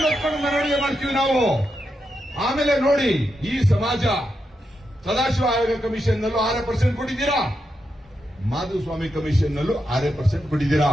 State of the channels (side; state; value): both; normal; correlation 0.85